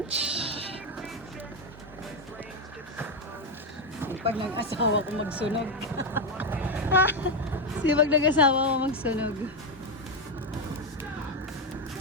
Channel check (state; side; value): normal; both; correlation 0.07